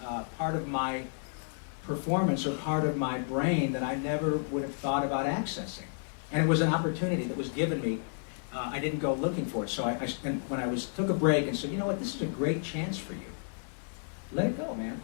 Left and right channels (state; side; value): silent; right; 57 dB below the other